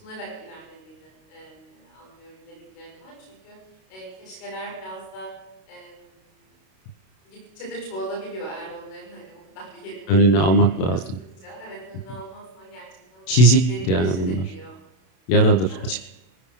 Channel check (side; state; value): right; late; 32 ms